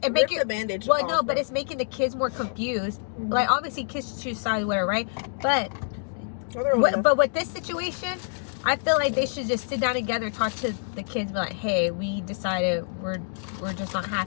bandage well, off, no, but it's making the kids more confused. Like, obviously kids choose sides, whatever, right? But with this situation, I feel like they should just sit down together, talk to the kids, be like, hey, we decided we're just not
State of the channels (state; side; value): silent; right; digital silence